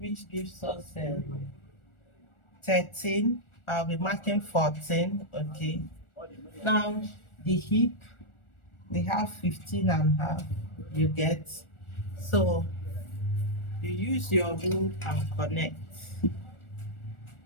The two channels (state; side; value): late; right; 1.4 ms